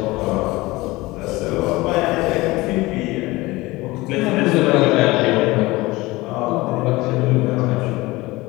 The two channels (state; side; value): quieter; right; 20.7 dB